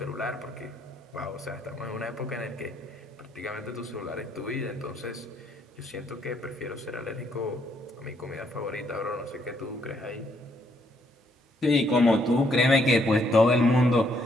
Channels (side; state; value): both; normal; correlation 0.71